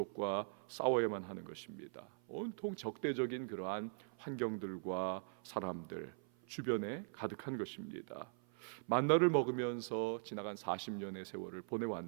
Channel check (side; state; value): left; silent; 50 dB below the other